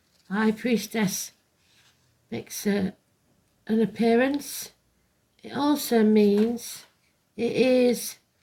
High Priestess makes an appearance. It also means it is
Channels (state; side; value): identical; both; correlation 1.00